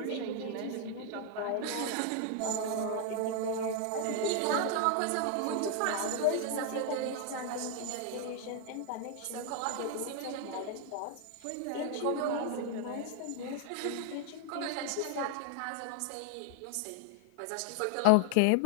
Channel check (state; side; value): different; both; correlation 0.00